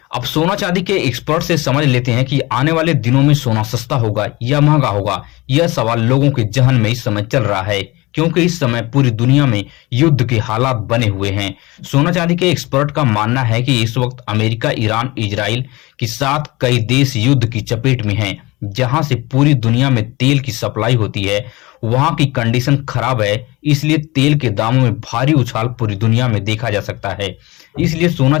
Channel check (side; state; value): right; quieter; 21.7 dB